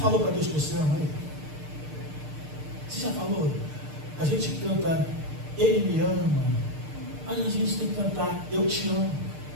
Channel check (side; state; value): left; late; 6.6 ms